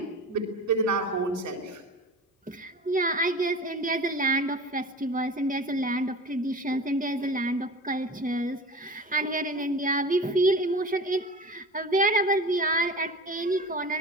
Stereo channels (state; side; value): normal; both; correlation 0.35